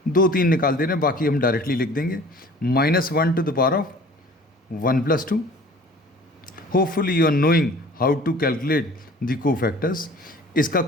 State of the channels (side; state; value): both; normal; correlation 0.47